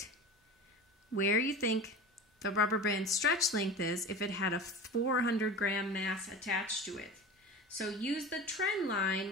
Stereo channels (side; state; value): both; normal; correlation 0.32